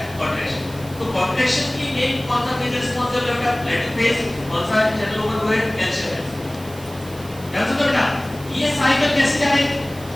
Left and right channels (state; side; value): noise; right; hiss, 19 dB below the sound